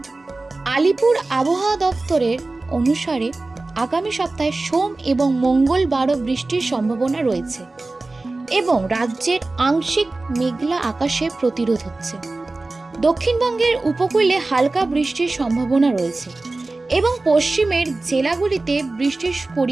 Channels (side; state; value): left; quieter; 3.2 dB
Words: আলিপুর আবহাওয়া দপ্তরের অনুসারে আগামী সপ্তাহে সোম এবং মঙ্গলবারও বৃষ্টির সম্ভাবনা রয়েছে এবং রাজ্যের আংশিক মেঘলা আকাশে প্রতিরোধ হচ্ছে। দক্ষিণবঙ্গের উপকূলে হালকা বৃষ্টির সম্ভাবনা রয়েছে এবং পশ্চিমের জেলাগুলিতে বৃষ্টির